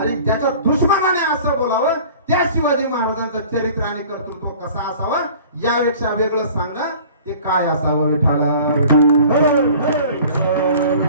ज्याच्या दुश्मनाने असं बोलावं, त्या शिवाजी महाराजांचं चरित्र आणि कर्तृत्व कसं असावं, यापेक्षा वेगळं सांगा ते काय असावं विठाला।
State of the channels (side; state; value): both; inverted; correlation -0.46